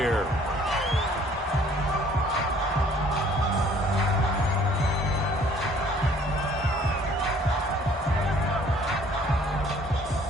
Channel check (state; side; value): normal; both; correlation 0.57